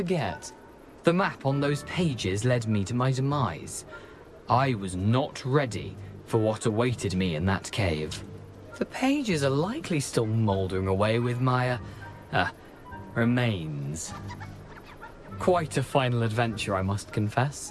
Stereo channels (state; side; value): identical; both; correlation 1.00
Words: The map on those pages led me to my demise. I was not ready for what awaited me in that cave. The pages are likely still mouldering away with my, remains. Quite a final adventure, I must confess.